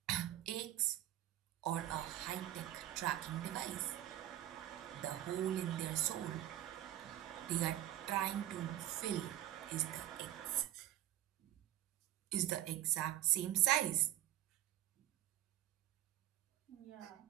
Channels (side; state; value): left; quieter; 13.2 dB